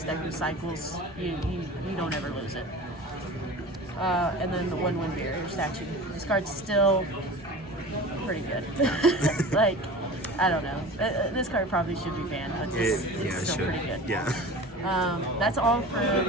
deck recycles, you don't ever lose it. And then the 1 Wind Barrier statue. This card's still pretty good. Like, I don't know. This card probably should be banned, but it's still pretty good. Yeah. That's all for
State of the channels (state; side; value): normal; both; correlation 0.36